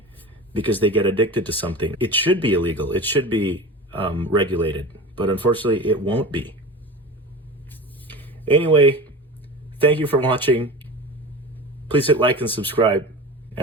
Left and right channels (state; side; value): normal; both; correlation 0.33